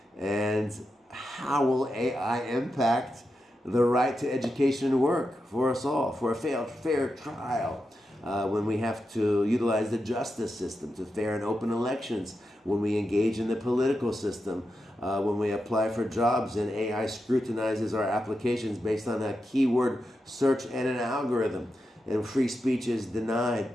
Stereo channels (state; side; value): normal; both; correlation 0.88